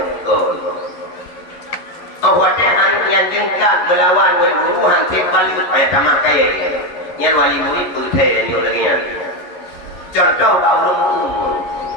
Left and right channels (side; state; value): right; late; 11 ms